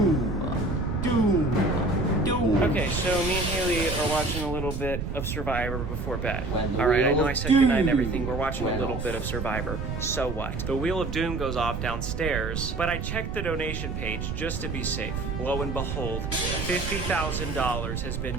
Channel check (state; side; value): noise; right; rumble, 4 dB below the sound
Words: Okay, so me and Haley are watching a little bit of Survivor before bed. Alright, I know I said goodnight and everything. We're watching a little bit of Survivor. So what? The Wheel of Doom goes off downstairs, but I checked the donation page just to be safe. Lo and behold, $50,000 has been